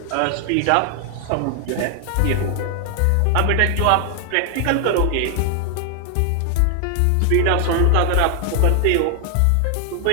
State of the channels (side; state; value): both; different; correlation 0.00